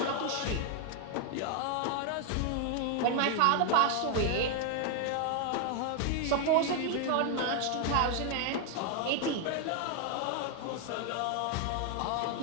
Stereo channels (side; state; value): both; different; correlation 0.00